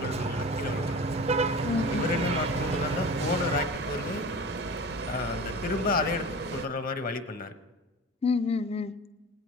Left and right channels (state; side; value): normal; both; correlation 0.35